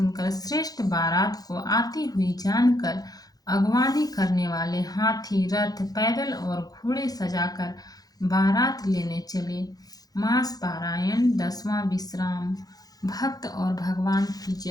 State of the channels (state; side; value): late; right; 0.18 ms